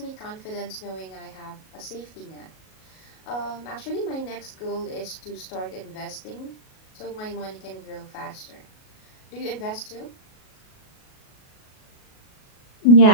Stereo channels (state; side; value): late; right; 37 ms